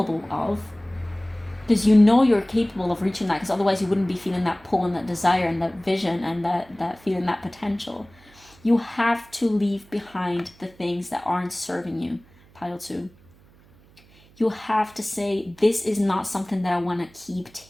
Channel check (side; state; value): right; noise; hum, 27 dB below the sound